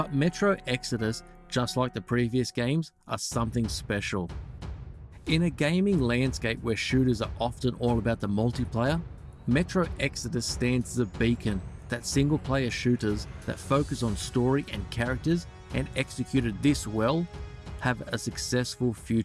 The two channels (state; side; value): identical; both; correlation 1.00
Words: Metro Exodus, just like the previous games, are something special. In a gaming landscape where shooters are often all about the multiplayer, Metro Exodus stands as a beacon that single-player shooters that focus on story and characters and executed this well have a successful